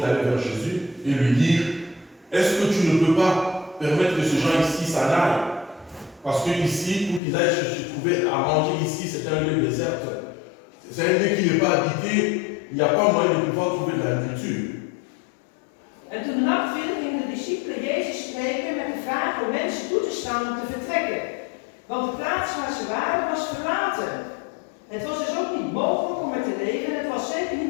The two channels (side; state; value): right; drops out; at 7.2 s